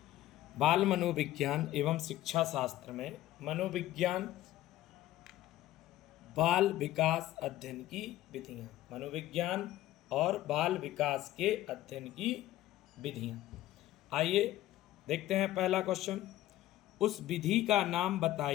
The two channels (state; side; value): quieter; right; 14.6 dB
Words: बाल मनोविज्ञान एवं शिक्षा शास्त्र में मनोविज्ञान बाल विकास अध्ययन की विधियाँ। मनोविज्ञान और बाल विकास के अध्ययन की विधियाँ। आइए देखते हैं पहला क्वेश्चन। उस विधि का नाम